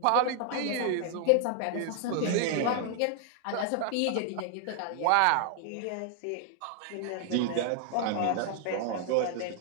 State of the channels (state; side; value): different; both; correlation 0.00